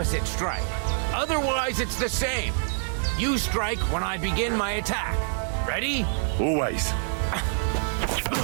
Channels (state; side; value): silent; left; digital silence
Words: strike. Otherwise, it's the same. You strike when I begin my attack. Ready? Always.